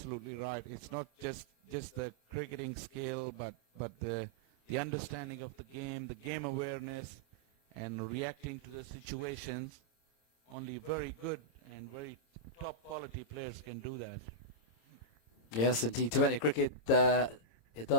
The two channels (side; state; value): right; late; 26 ms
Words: right. It's not just the cricketing skill, but the understanding of the game awareness, and reacting to the situations. Only very good and very top quality players can do that. Yes, in T20 cricket,